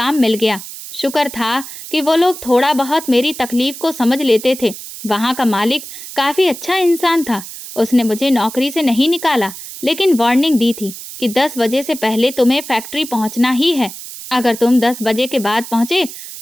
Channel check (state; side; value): noise; right; hiss, 12 dB below the sound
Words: मिल गया। शुक्र था कि वो लोग थोड़ा बहुत मेरी तकलीफ को समझ लेते थे। वहाँ का मालिक काफ़ी अच्छा इंसान था। उसने मुझे नौकरी से नहीं निकाला, लेकिन वार्निंग दी थी कि 10 बजे से पहले तुम्हें फैक्ट्री पहुँचना ही है। अगर तुम 10 बजे के बाद पहुँचे